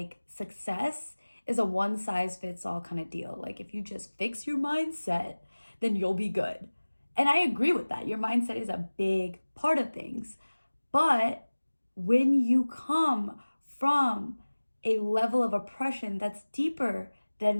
success is a one size fits all kind of deal. Like, if you just fix your mindset, then you'll be good. And I agree with that. Your mindset is a big part of things. But when you come from a level of oppression that's deeper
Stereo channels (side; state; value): both; inverted; correlation -1.00